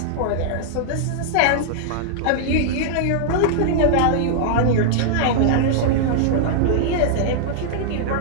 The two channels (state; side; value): different; both; correlation -0.01